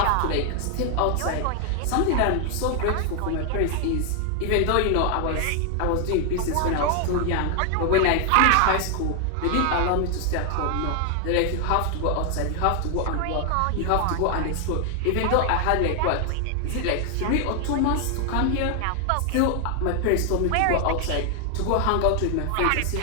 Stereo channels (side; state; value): both; different; correlation 0.00